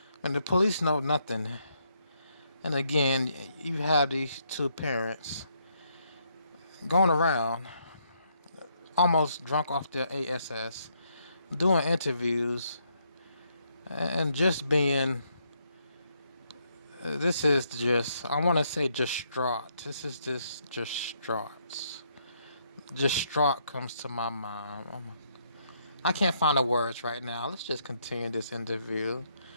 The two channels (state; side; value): inverted; both; correlation -0.74